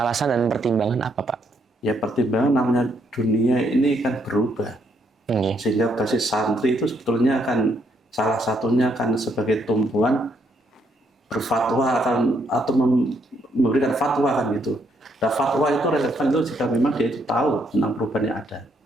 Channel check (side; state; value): both; normal; correlation 0.73